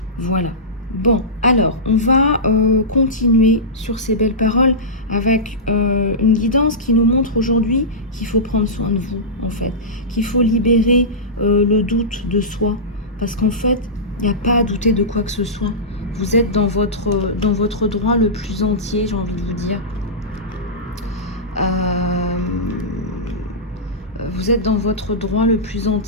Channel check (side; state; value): both; normal; correlation -0.16